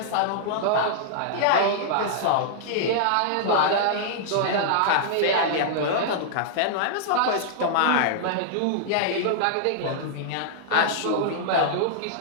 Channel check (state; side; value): different; both; correlation -0.01